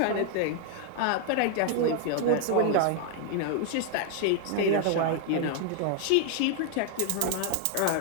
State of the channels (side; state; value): both; different; correlation 0.00